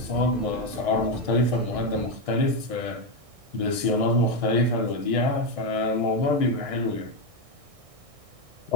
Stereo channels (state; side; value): late; left; 1.6 ms